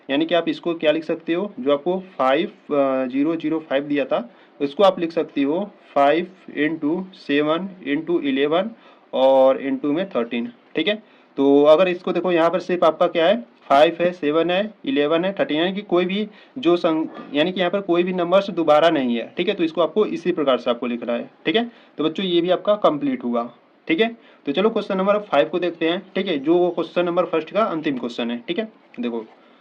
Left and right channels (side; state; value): both; identical; correlation 1.00